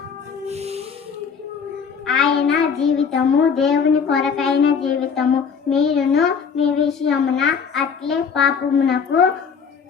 ఆయన జీవితము దేవుని కొరకైన జీవితము. మీరును మీ విషయమున అట్లే పాపమునకు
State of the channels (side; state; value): right; quieter; 6.2 dB